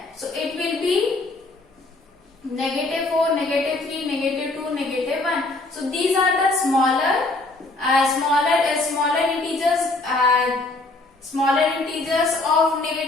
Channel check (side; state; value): right; quieter; 3.0 dB